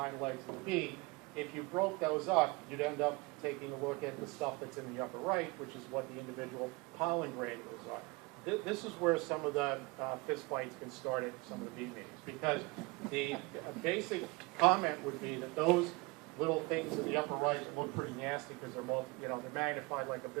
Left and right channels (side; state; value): left; quieter; 25.9 dB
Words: legs of the bee. If you broke those up, you'd end up taking a look at the stuff that's in the upper right, which is what the individual pollen granules are. this is where some of the fist fights can start at some of the bee meetings, because the basic comment would be that those little things in the upper right that look pretty nasty because they're magnified like a